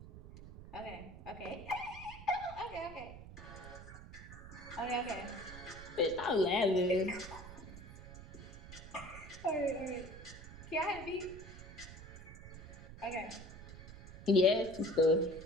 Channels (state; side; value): noise; right; rumble, 14 dB below the sound